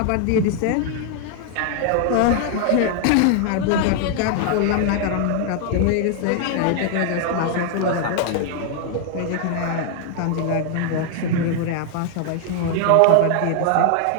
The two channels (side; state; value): both; different; correlation 0.00